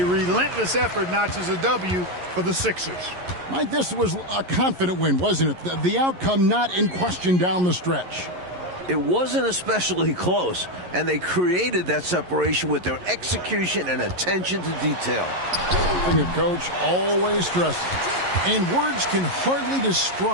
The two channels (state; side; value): late; left; 11 ms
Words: relentless effort notches a W for the Sixers. Mike, this was a confident win, wasn't it? The outcome not in question down the stretch. It wasn't especially close, and they created that separation with their execution and attention to detail. Something a coach always stresses. And words can hardly